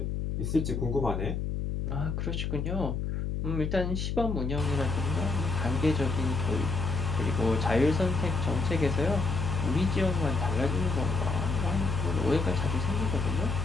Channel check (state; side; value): noise; left; hum, 2 dB below the sound